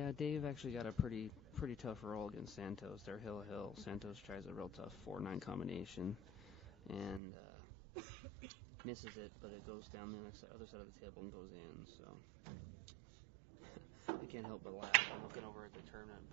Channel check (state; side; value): drops out; left; at 7.2 s